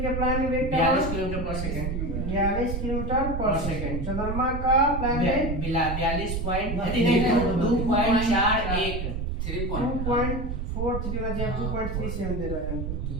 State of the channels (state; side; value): noise; right; rumble, 3 dB below the sound